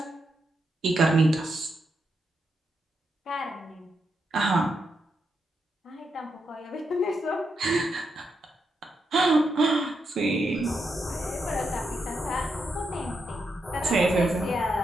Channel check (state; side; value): normal; both; correlation 0.83